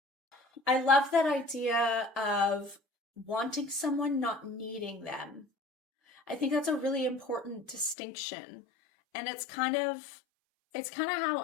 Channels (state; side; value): drops out; right; at 8.0 s